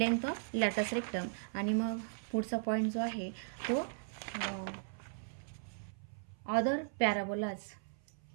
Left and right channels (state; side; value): silent; left; 53 dB below the other